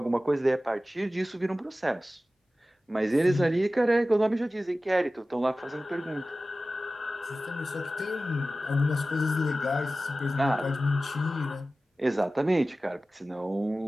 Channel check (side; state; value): both; normal; correlation 0.96